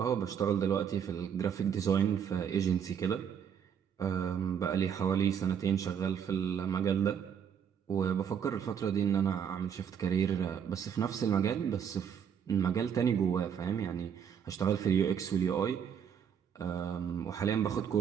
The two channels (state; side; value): quieter; left; 8.0 dB